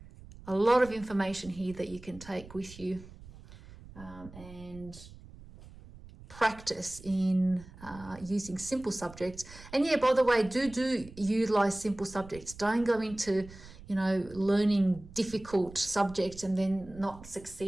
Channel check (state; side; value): noise; right; rumble, 18 dB below the sound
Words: a lot of information here that you can take with you and practice in using simple subjects. And yeah, by the way, do utilize simple subjects. Don't go into, you know, learning difficult subjects and then not